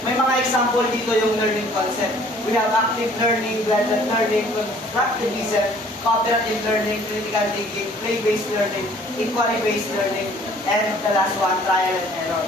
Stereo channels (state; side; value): normal; both; correlation 0.56